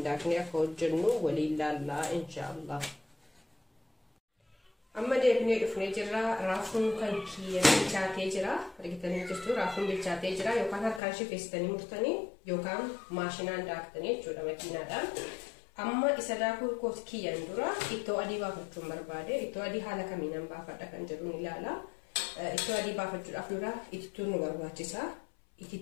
daaknee akka hojjennu waliin laallaa inshaallah. Amma deebinee dhufnee jirra. Raafuun kan bilchaatee jira. Argitanii jirtu raafuun bilchaatee jira yookaan harkaan shifeessitanii murtanii yookaan maashinaan daaktanii jechuudha makiinaadhaan. Amma isa daakuu kooti kiyyaan dura ittoo adii baafachuun barbaade. Ittoo adii haala kamiin baafadha kan jedhu ni ilaala. Ittoo adii baafachuudhaaf dura itittuun nu barbaachisa.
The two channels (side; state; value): right; drops out; at 11.0 s